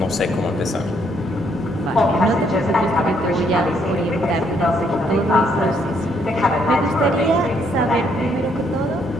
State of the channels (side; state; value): both; normal; correlation 0.71